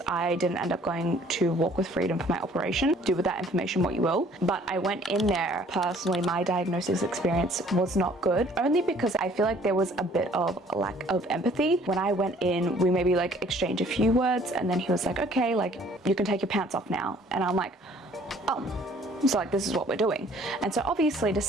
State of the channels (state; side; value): normal; both; correlation 0.57